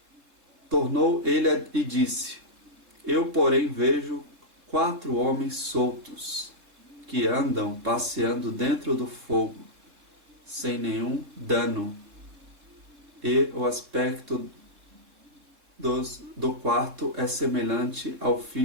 Tornou ele e disse: Eu, porém, vejo 4 homens soltos, que andam passeando dentro do fogo, sem nenhum dano, e o aspecto do quarto é semelhante ao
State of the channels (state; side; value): late; left; 3.7 ms